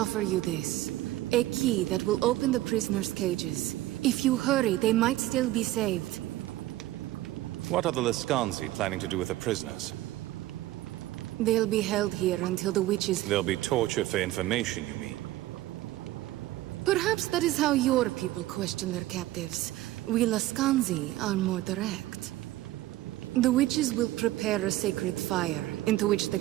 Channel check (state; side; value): quieter; left; 16.0 dB